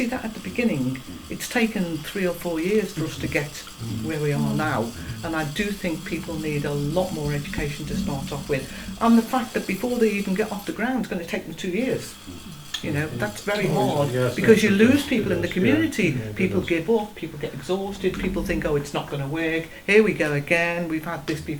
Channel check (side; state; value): both; identical; correlation 1.00